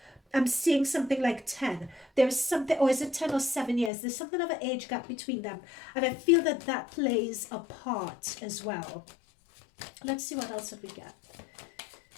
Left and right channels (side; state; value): right; drops out; at 3.9 s